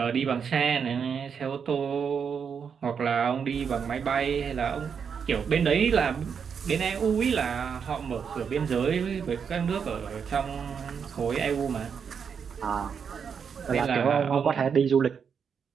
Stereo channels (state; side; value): quieter; left; 6.8 dB